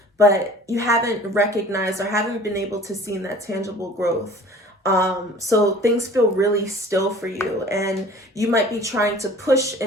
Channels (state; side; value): normal; both; correlation 0.46